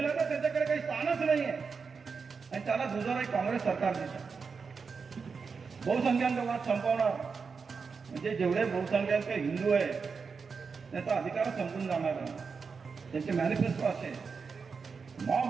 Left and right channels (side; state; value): left; quieter; 5.3 dB